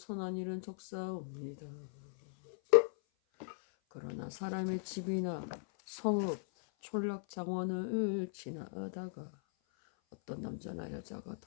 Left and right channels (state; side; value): silent; right; 52 dB below the other